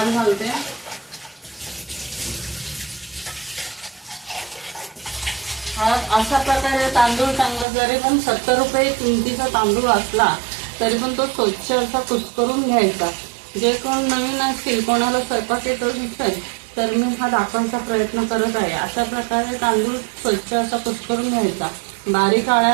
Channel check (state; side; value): drops out; left; at 7.7 s